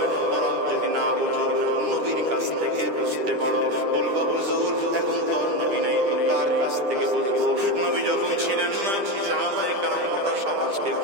কোরআন যদি না বুঝো নবীর কাছ থেকে বুঝতে পারো, বলবা হুজুর এখন তো নবী নাই তো কার কাছ থেকে বুঝবো? নবী যখন ছিলেন না সাহাবায়ে কেরাম গোটা সমাজকে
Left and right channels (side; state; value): left; late; 10 ms